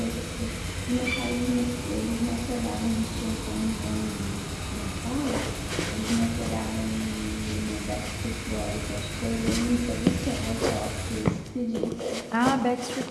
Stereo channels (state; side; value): identical; both; correlation 1.00